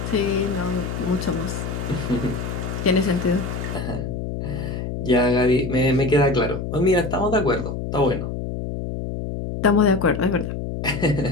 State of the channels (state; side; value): noise; left; hum, 5 dB below the sound